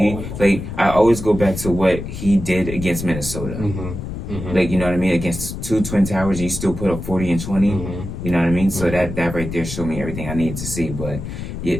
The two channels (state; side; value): noise; left; rumble, 7 dB below the sound